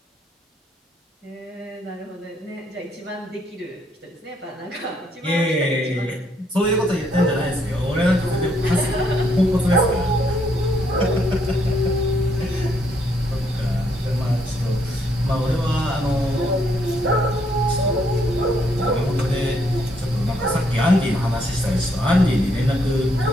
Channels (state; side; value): normal; both; correlation 0.72